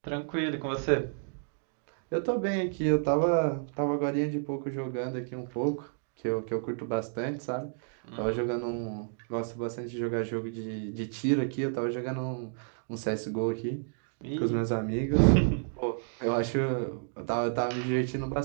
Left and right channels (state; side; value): silent; left; digital silence